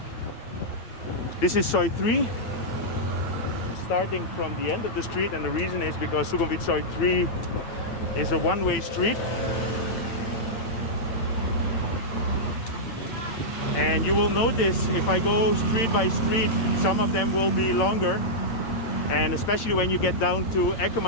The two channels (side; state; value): right; late; 8.9 ms